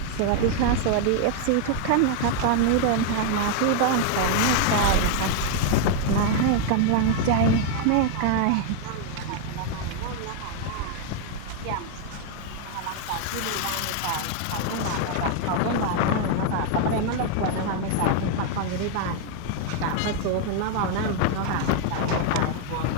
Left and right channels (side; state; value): both; different; correlation 0.00